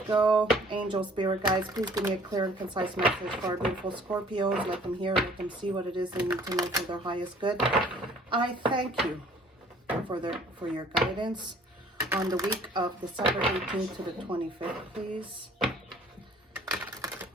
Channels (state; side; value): normal; both; correlation 0.55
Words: Angel Spirit guides, please give me a clear and concise message for our beautiful Scorpios. Let them hear, let them see what it is they need to know for their highest good. I thank you for your guidance on the week of December 18th to the 25th, please.